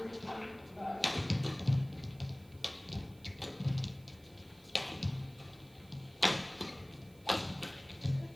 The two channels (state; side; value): noise; right; hiss, 27 dB below the sound